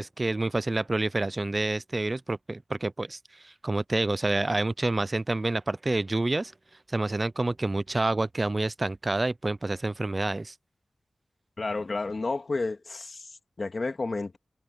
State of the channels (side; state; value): both; normal; correlation 0.98